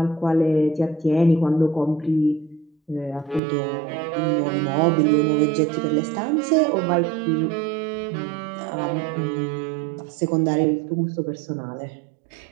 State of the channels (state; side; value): drops out; left; at 3.4 s